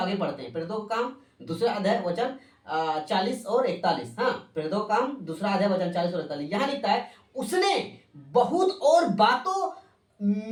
बढ़ते हैं। प्रेरितों का काम दूसरा अध्याय वचन 40 और 41। हाँ, प्रेरितों का काम दूसरा अध्याय वचन 40 और 41। यहाँ लिखता है, उसने बहुत और बातों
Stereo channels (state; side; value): identical; both; correlation 1.00